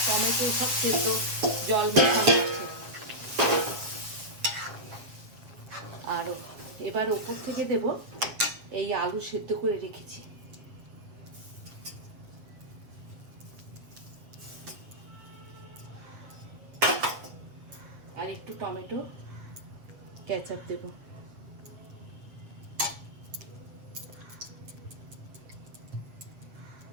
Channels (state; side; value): late; left; 7.9 ms